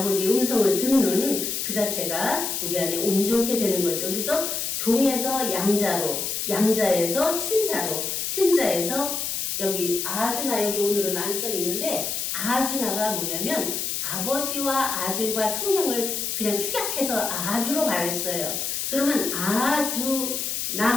음성을 듣는 그 자체가 우리 안에 온전케 되는 거죠. 그래서 종에서 양자로, 양자에서 친자로, 친자에서 여기 아주나 여기 오늘은 안 써 있는데 아주나가 뭐냐면 아버지와 아들과 성령을 그냥 축약해서 아주로 말했어요. 그러면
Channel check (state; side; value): noise; left; hiss, 2 dB below the sound